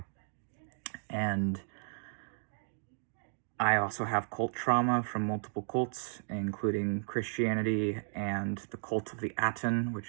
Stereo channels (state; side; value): silent; left; digital silence